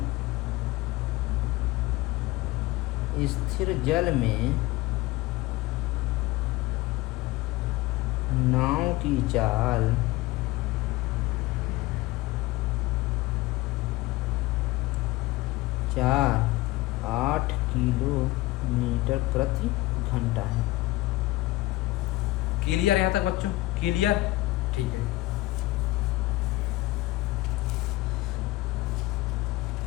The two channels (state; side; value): quieter; right; 18.8 dB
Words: नाव की चाल 8 किलोमीटर प्रति घंटा है। क्लियर यहाँ तक बच्चों? क्लियर? ठीक है।